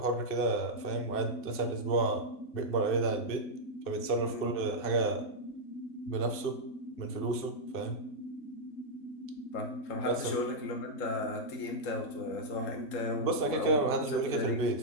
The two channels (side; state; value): right; late; 2.7 ms